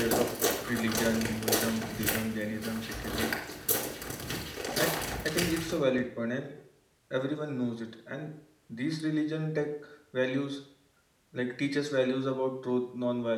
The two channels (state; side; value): identical; both; correlation 1.00